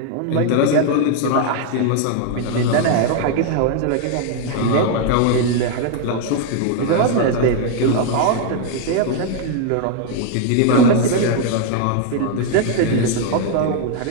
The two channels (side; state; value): both; different; correlation 0.00